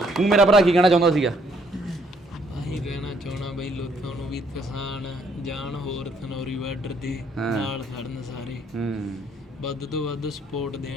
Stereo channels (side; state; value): both; normal; correlation 0.67